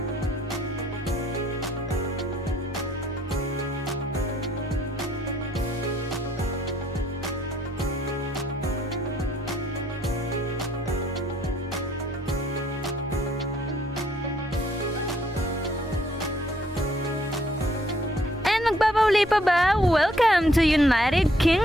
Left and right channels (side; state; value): both; normal; correlation 0.66